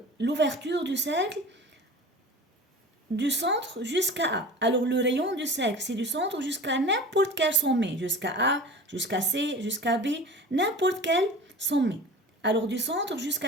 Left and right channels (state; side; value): normal; both; correlation 0.37